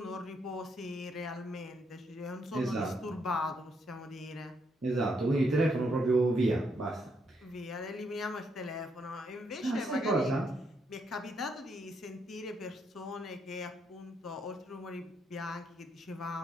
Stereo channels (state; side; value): normal; both; correlation 0.76